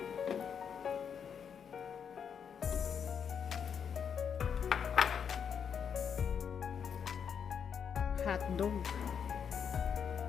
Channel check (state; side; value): quieter; right; 7.4 dB